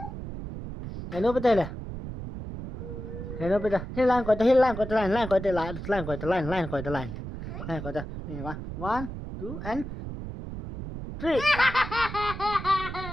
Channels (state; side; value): noise; right; rumble, 8 dB below the sound